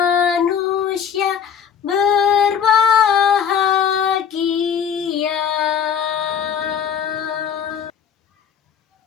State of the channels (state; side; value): quieter; right; 7.9 dB